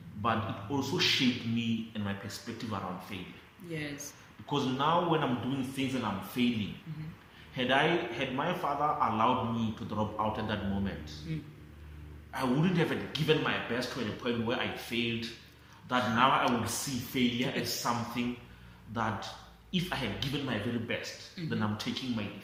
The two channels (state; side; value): identical; both; correlation 1.00